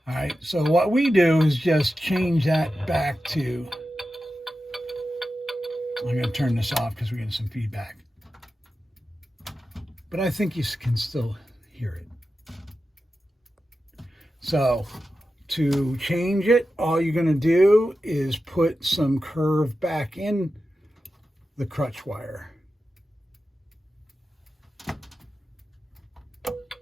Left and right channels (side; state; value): both; normal; correlation 0.92